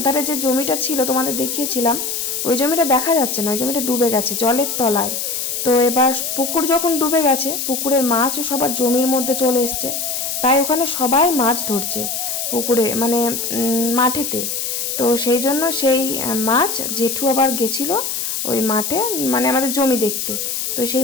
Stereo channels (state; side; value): noise; left; hiss, 3 dB below the sound